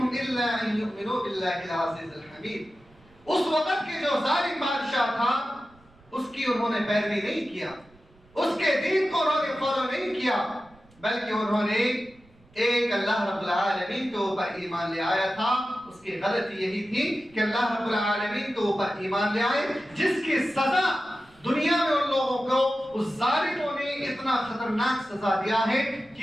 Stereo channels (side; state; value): right; noise; rumble, 29 dB below the sound